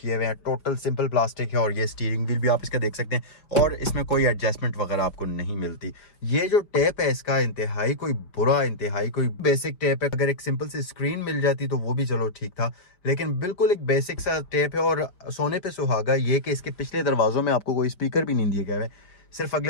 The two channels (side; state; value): right; late; 5.3 ms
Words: हुए हैं, टोटल सिंपल प्लास्टिक है, और ये स्टीयरिंग व्हील भी आप इसका देख सकते हैं, और इसमें कोई एडजस्टमेंट वगैरह आपको नहीं मिलती। ये जो टेप है इसका इंतहाई कोई बुरा, इंतहाई कोई बेसिक टेप है। अगर एक सिंपल सी स्क्रीन मिल जाती तो वो भी चलो ठीक था, लेकिन बिल्कुल एक बेसिक सा टेप है। और सोने पे सुहागा ये कि इसके पिछले दरवाज़ों में आपको कोई स्पीकर भी नहीं दिए गए हैं, सिर्फ